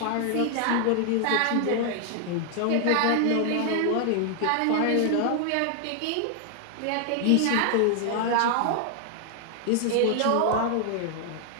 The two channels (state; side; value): different; both; correlation 0.00